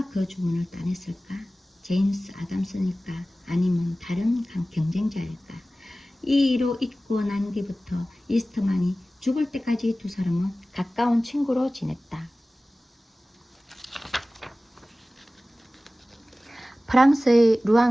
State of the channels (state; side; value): normal; both; correlation 0.97